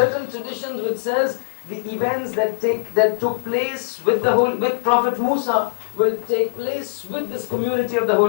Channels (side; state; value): right; silent; digital silence